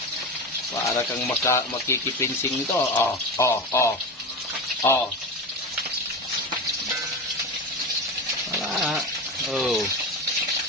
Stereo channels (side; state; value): both; normal; correlation 0.23